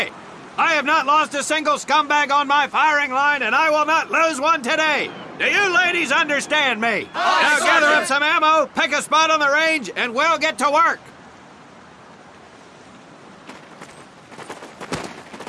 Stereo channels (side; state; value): both; identical; correlation 1.00